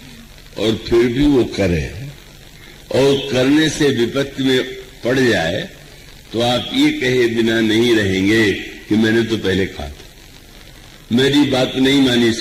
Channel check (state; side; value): identical; both; correlation 1.00